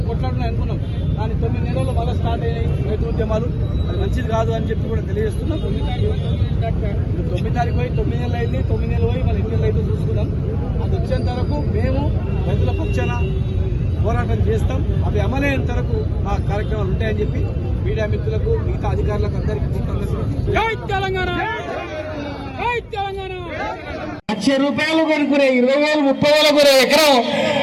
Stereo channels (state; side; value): identical; both; correlation 1.00